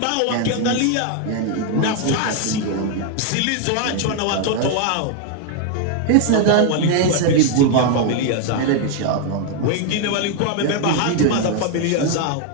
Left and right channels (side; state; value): both; different; correlation 0.01